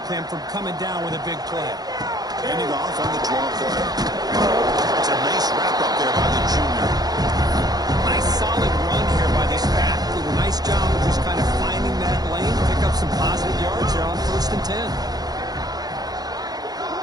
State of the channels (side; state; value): left; late; 0.19 ms